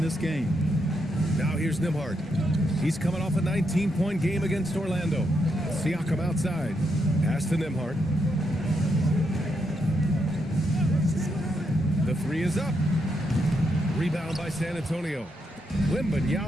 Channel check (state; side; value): normal; both; correlation 0.81